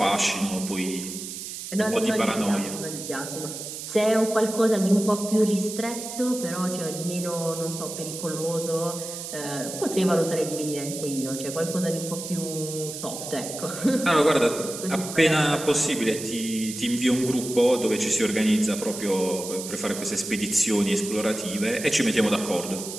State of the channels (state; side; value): noise; right; hiss, 8 dB below the sound